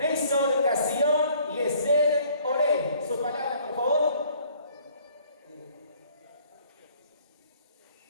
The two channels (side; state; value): both; inverted; correlation -0.58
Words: Castillón y Esther Olé. Sus palabras, por favor.